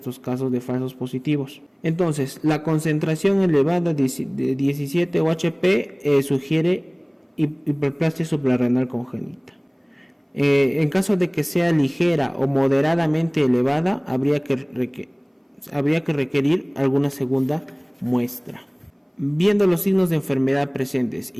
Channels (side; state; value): both; identical; correlation 1.00